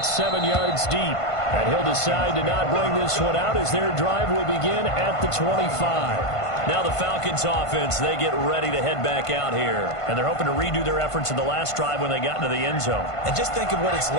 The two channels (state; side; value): late; right; 1.5 ms